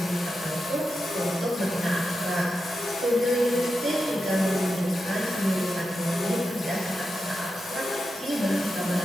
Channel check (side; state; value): both; normal; correlation 0.89